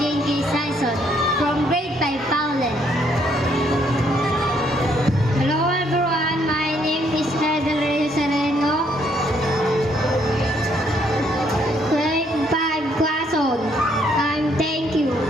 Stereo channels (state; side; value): normal; both; correlation 0.70